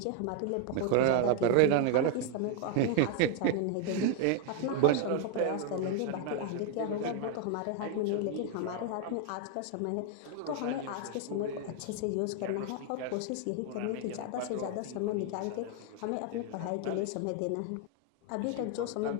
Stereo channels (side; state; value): both; different; correlation 0.01